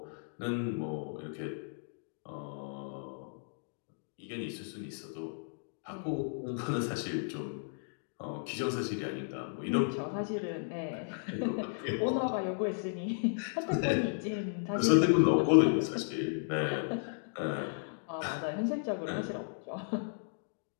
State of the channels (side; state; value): right; silent; digital silence